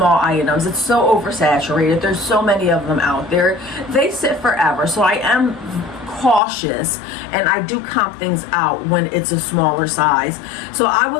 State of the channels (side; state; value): right; drops out; at 6.4 s